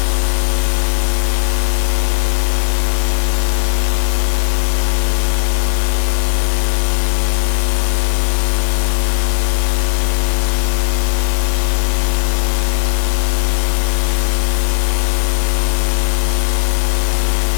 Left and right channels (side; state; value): right; silent; digital silence